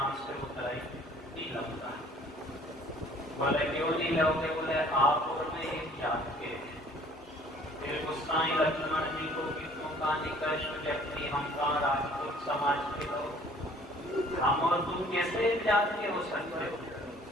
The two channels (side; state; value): both; normal; correlation 0.54